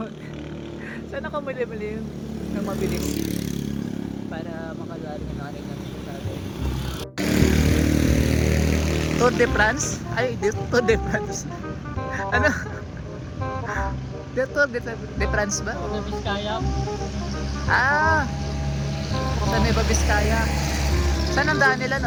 Sana kumilim ng mabilis. Para makagaling ang aning natin natin. Tour de France? Ay, Tour de France. Ano? Tour de France ba? Sa Biskaya, Sa Nueva Vizcaya. Saan ang daan nila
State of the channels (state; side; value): identical; both; correlation 1.00